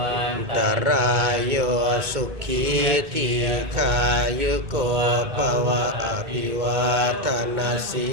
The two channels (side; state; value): left; late; 2.2 ms